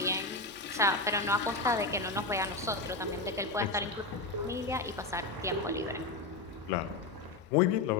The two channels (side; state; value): right; quieter; 3.3 dB